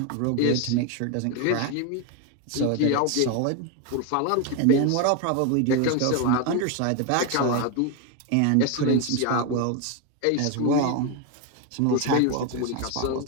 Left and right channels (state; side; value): different; both; correlation 0.02